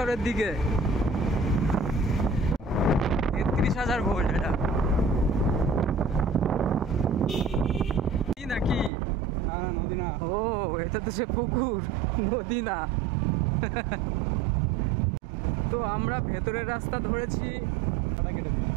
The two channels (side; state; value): left; drops out; at 8.9 s